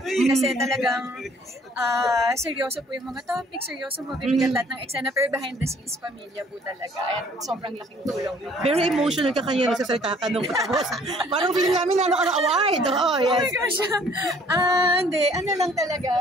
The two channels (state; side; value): normal; both; correlation 0.58